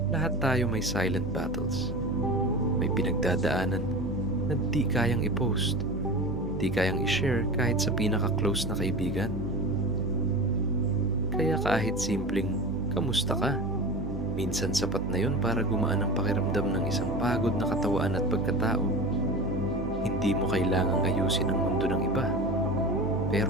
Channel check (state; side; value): noise; right; hum, 9 dB below the sound